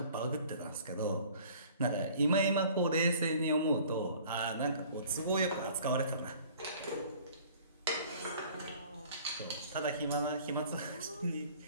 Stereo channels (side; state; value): both; inverted; correlation -0.51